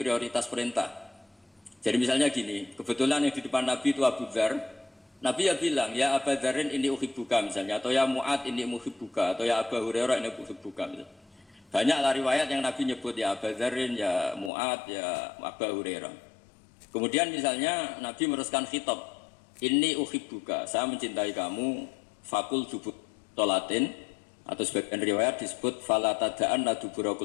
perintah. Jadi misalnya gini, kebetulan yang di depan Nabi itu Abu Dzar. Nabi ya bilang, ya Abu Dzarin ini uhibbuka misalnya, atau ya Mu'ad ini uhibbuka, atau ya Abu Hurairah ini uhibbuka misalnya. Banyaklah riwayat yang Nabi nyebut ya Abu Dzarin, ya Mu'ad, ya Abu Hurairah. Kemudian misalnya Nabi meneruskan khitab, ini uhibbuka, saya mencintai kamu, fakul dubur sholatin, atau sebagian riwayat disebut fala tada'an la dubura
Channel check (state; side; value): drops out; right; at 14.5 s